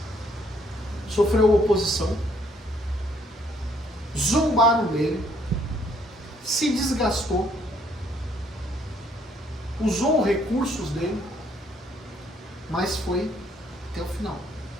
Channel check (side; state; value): both; normal; correlation 0.66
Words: sofreu oposição, zombaram dele, se desgastou, usou recursos dele, mas foi até o final.